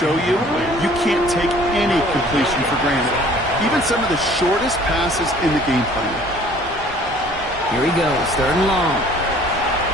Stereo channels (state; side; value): normal; both; correlation 0.53